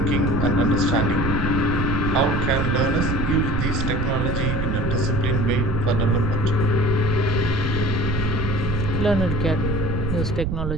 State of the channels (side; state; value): right; noise; rumble, 1 dB below the sound